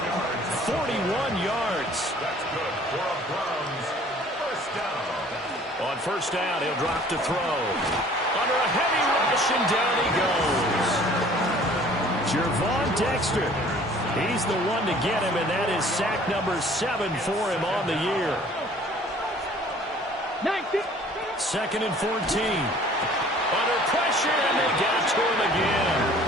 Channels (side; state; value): both; normal; correlation 0.52